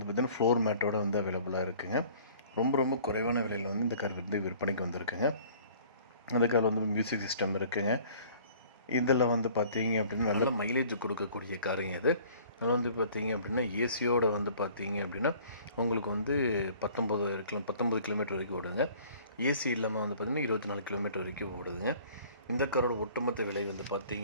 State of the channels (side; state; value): both; inverted; correlation -0.52